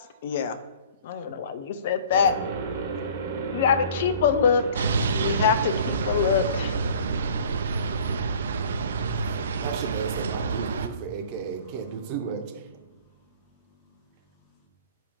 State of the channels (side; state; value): both; inverted; correlation -0.48